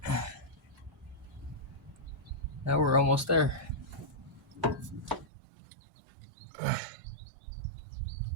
Now we're almost there.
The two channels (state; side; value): drops out; left; at 5.2 s